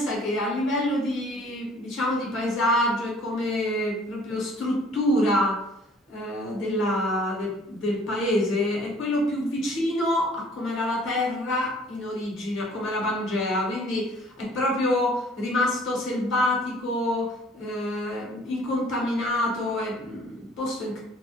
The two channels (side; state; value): both; normal; correlation 0.54